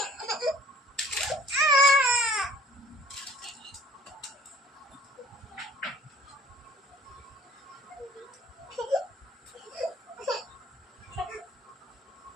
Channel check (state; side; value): normal; both; correlation 0.52